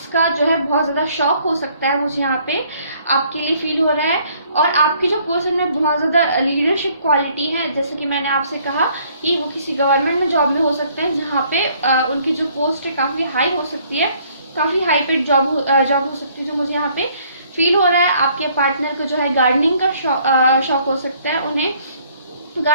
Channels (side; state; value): both; inverted; correlation -0.62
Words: का जो है बहुत ज़्यादा शौक हो सकता है, मुझे यहाँ पे आपके लिए फील हो रहा है। और आपकी जो पर्सन में बहुत ज़्यादा लीडरशिप क्वालिटी है, जैसे कि मैंने आपसे कहा कि वो किसी गवर्नमेंट में जॉब में हो सकते हैं, जहाँ पे उनकी जो पोस्ट है काफ़ी हाई हो सकती है, काफ़ी हाई पेड जॉब हो सकती है, जो मुझे यहाँ पे फील हो रहा है। आपके पार्टनर को जो है गार्डनिंग का शौक हो सकता है, उन्हें